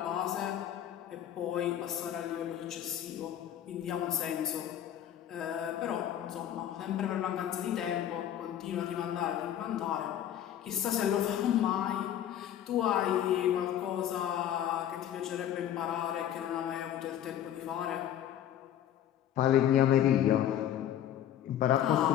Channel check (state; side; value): quieter; right; 10.8 dB